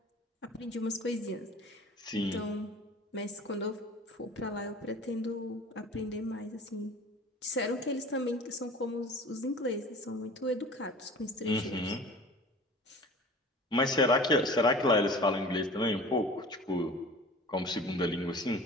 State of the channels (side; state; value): both; normal; correlation 0.41